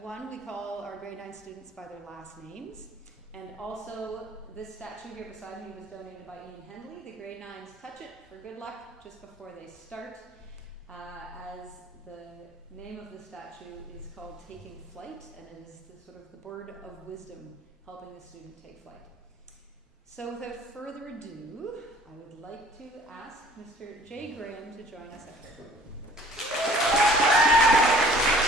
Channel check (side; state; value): both; normal; correlation 0.52